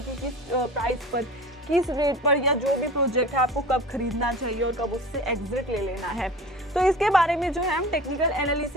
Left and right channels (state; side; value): normal; both; correlation 0.37